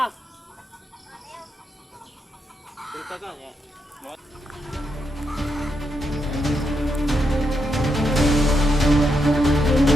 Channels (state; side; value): normal; both; correlation 0.82